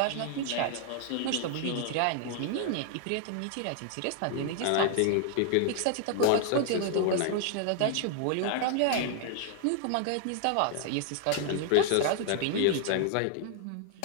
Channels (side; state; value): both; different; correlation 0.00